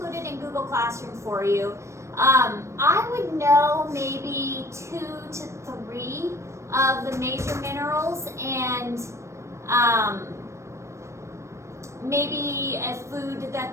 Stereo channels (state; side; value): late; left; 0.14 ms